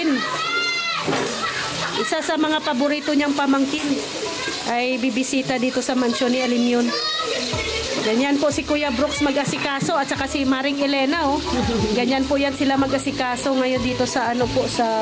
Isa sa mga paborito niyang pamangkin ay bibisita dito sa mansyon ni Alimyon. Ganyan po si Kuya Brooks mag-asikaso at saka si Maring Elena, oh. Ganyan po yan sila mag-asikaso ngayon dito sa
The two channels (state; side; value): identical; both; correlation 1.00